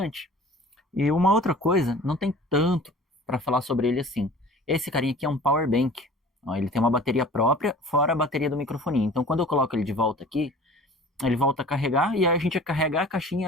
E uma outra coisa, não tem tanto para falar sobre ele assim. Esse carinha aqui é um power bank. Ó, ele tem uma bateria própria, fora a bateria do microfone. Então quando eu coloco ele de volta aqui, ele volta a carregar e aí a gente carrega a caixinha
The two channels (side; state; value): both; normal; correlation 0.44